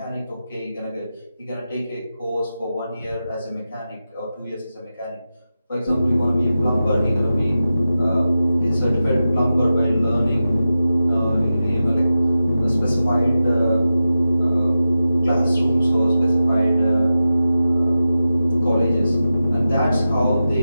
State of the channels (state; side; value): inverted; both; correlation -0.92